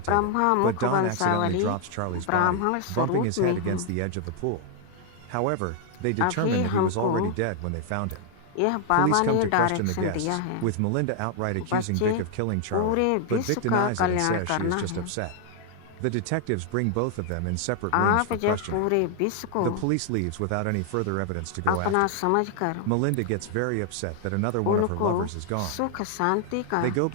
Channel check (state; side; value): different; both; correlation 0.00